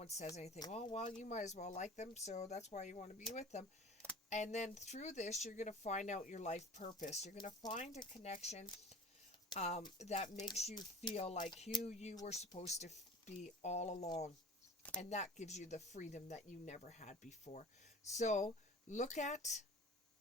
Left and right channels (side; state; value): both; normal; correlation 0.41